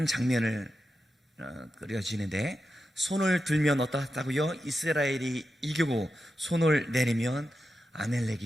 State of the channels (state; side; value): normal; both; correlation 0.89